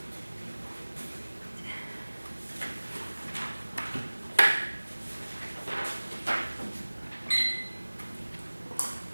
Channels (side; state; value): both; inverted; correlation -1.00